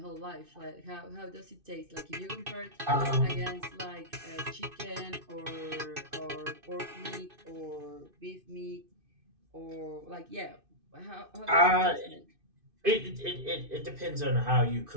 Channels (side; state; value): left; late; 2.5 ms